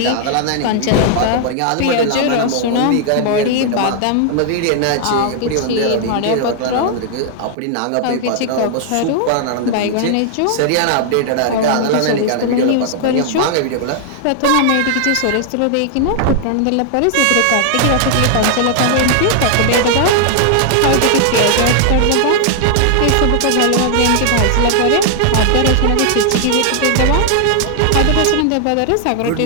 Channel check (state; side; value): different; both; correlation 0.00